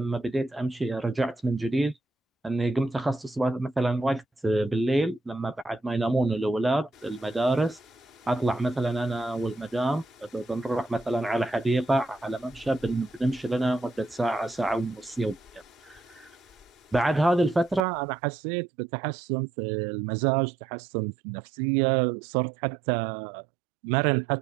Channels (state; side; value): drops out; left; at 17.8 s